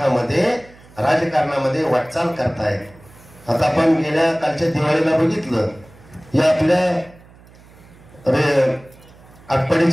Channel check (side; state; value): right; noise; hum, 24 dB below the sound